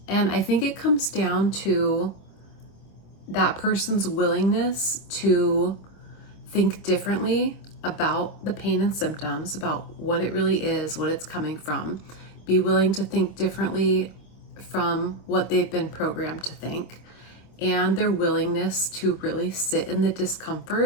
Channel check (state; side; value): late; right; 26 ms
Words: I think it comes down to that person's willingness to think differently about the pain and symptoms, about what it really is, what it's coming from. Be willing to think differently from what they've been programmed to think, and their willingness to really sit in the